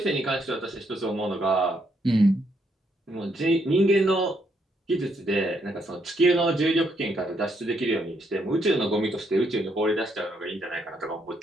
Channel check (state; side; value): normal; both; correlation 0.75